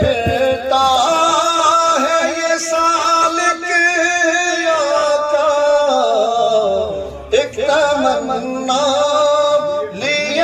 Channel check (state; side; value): identical; both; correlation 1.00